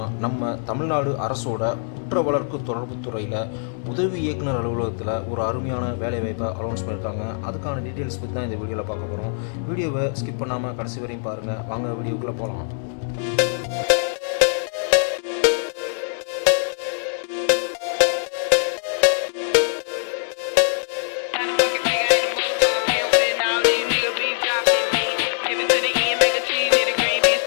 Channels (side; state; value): right; silent; digital silence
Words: நம்ம தமிழ்நாடு அரசோட குற்ற வழக்கு தொடர்பு துறையில் உதவி இயக்குனர் அலுவலகத்தில் ஒரு அருமையான வேலைவாய்ப்பை அனௌன்ஸ் பண்ணியிருக்காங்க. அதுக்கான டீட்டெயில்ஸ் பற்றி தான் இந்த வீடியோவில் பார்க்க போகிறோம். வீடியோவை ஸ்கிப் பண்ணாமல் கடைசி வரையும் பாருங்கள். வாங்க வீடியோக்குள்ளே போகலாம்.